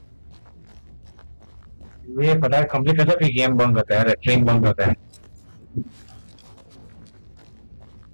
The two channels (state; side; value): inverted; both; correlation -1.00